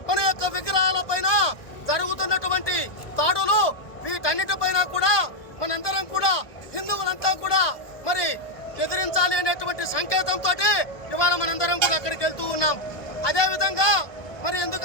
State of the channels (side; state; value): right; late; 1.2 ms